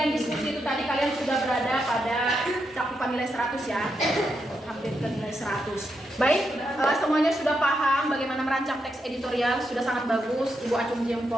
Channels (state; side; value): normal; both; correlation 0.83